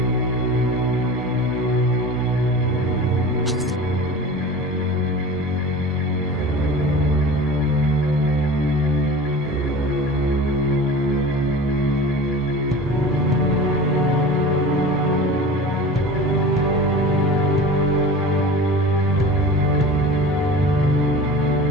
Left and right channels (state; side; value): normal; both; correlation 0.36